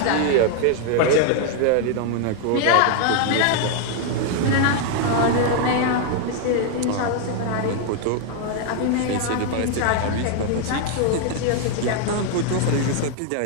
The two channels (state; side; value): different; both; correlation 0.00